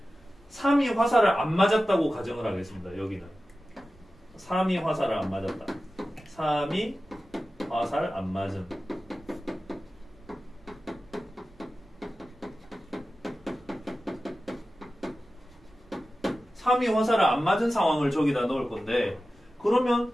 3이 화살을 안 맞았다고 가정을 하겠습니다. 여기는 3이 화살을 안 맞았다. 3이 화살 안 맞은. 삼이 화살을 안 맞은 상황을 저기다 넣을 건데 그러면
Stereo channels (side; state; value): right; noise; rumble, 29 dB below the sound